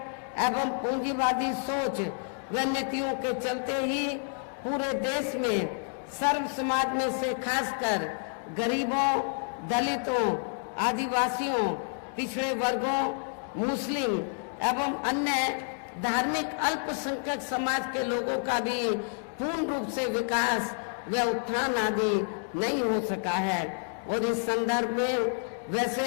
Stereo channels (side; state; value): right; silent; 55 dB below the other